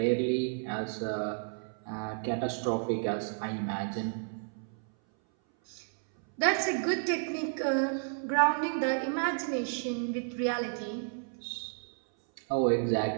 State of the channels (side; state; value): left; silent; 57 dB below the other